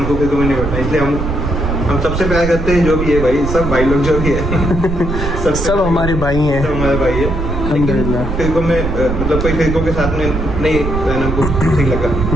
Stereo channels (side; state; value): right; noise; rumble, 4 dB below the sound